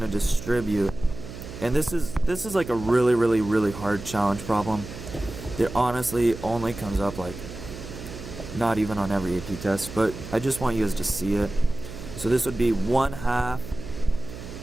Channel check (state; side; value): noise; right; hum, 12 dB below the sound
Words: to distribute. And this is like a really, really, really hard challenge problem. It honestly only comes up like not even on every AP test, but I just want you guys to see it. So this would be 1/2